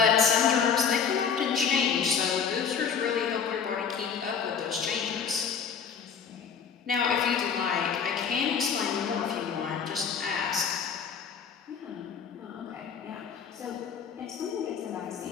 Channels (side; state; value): right; quieter; 6.7 dB